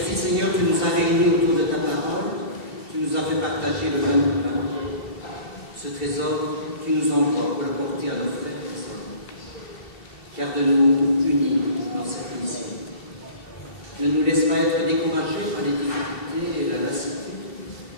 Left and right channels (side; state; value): right; late; 2.7 ms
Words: Seigneur, tu nous as réunis autour de ta parole, tu nous as fait partager le même pain. Ce trésor, tu nous envoies pour le porter à nos frères et sœurs. Garde-nous unis dans cette mission. Ne nous laisse pas être découragés par les difficultés et la lassitude.